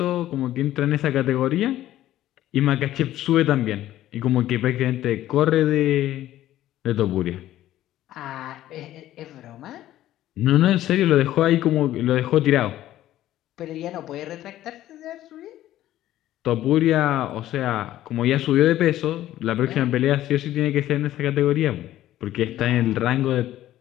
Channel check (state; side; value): quieter; right; 13.7 dB